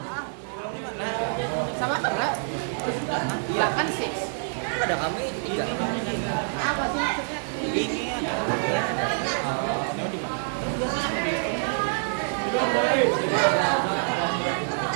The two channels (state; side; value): silent; left; digital silence